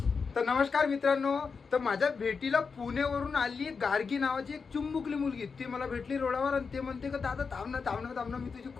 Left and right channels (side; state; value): right; quieter; 5.2 dB